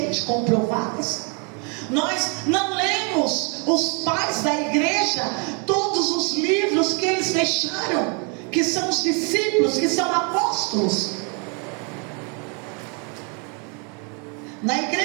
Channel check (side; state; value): left; quieter; 35.5 dB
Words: comprovadas. Nós não lemos os pais da igreja, todos os livros que eles deixaram, que são os discípulos, que são apóstolos. Na